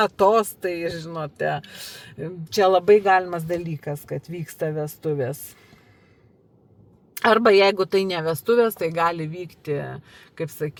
tostai, žinote. Čia labai galimas dalykas, kad vyksta vestuvės. Arba jeigu tai ne vestuvės, tai gali vykti, kaip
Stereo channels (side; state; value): both; identical; correlation 1.00